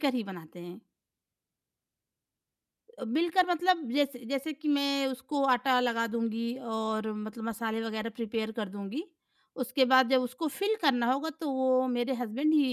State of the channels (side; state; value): both; identical; correlation 1.00